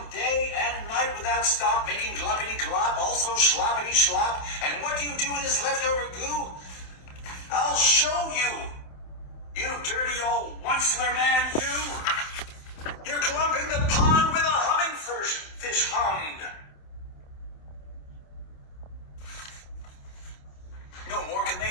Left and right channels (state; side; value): late; right; 27 ms